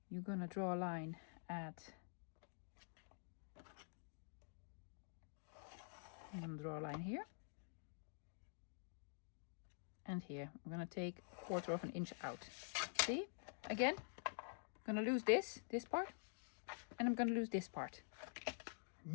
You're gonna draw a line at, I'm gonna draw a line here. And here, I'm gonna take 1/4 of an inch out. See? Again, I'm gonna lose this part, and I'm gonna lose this part.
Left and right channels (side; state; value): right; silent; digital silence